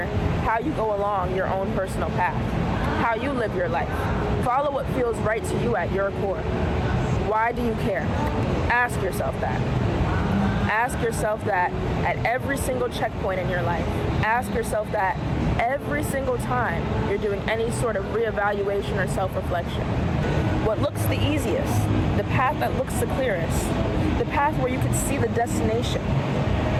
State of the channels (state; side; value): identical; both; correlation 1.00